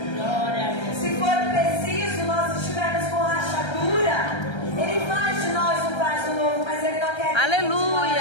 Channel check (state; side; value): late; right; 1.3 ms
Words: Se for preciso, nós estivermos com rachadura, Ele faz de nós um vaso novo, mas Ele não quer que